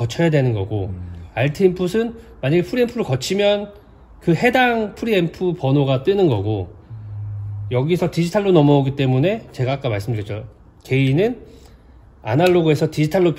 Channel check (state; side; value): identical; both; correlation 1.00